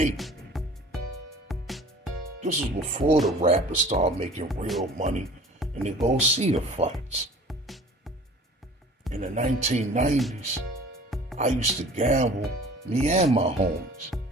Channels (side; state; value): both; normal; correlation 0.46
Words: This was before the rappers started making real money and they go see the fights. In the 1990s, I used to gamble, me and my homies.